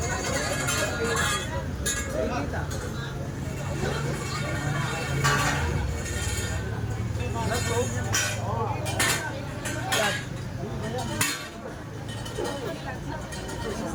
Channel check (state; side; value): identical; both; correlation 1.00